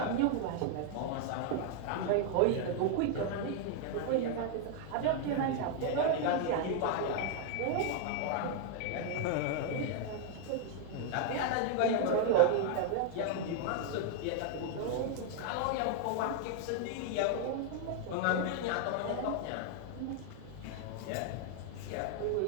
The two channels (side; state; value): both; different; correlation 0.00